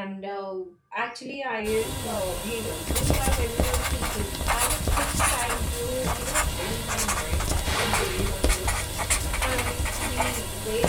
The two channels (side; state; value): both; identical; correlation 1.00